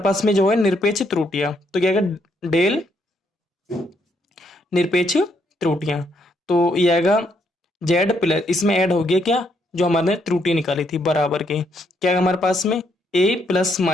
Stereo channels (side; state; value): both; normal; correlation 0.74